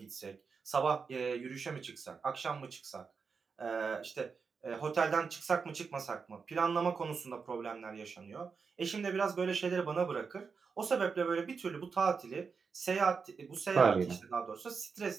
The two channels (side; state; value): left; quieter; 5.4 dB